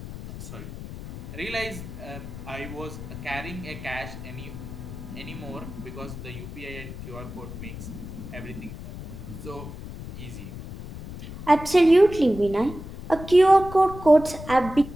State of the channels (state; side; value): noise; left; rumble, 11 dB below the sound